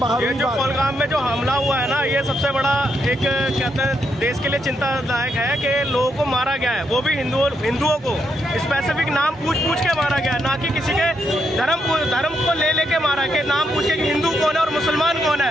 ये जो पहलगाम में जो हमला हुआ है ना, ये सबसे बड़ा एक कहते हैं देश के लिए चिंतादायक है कि लोगों को मारा गया है, वो भी हिंदुओं को स्पेसिफिक नाम पूछ के मारा गया है, ना कि किसी के धर्म को लेके मारा के नाम पूछ के कि हिंदू कौन है और मुसलमान कौन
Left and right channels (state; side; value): normal; both; correlation 0.79